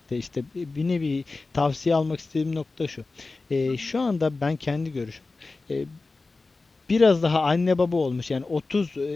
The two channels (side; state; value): right; quieter; 3.6 dB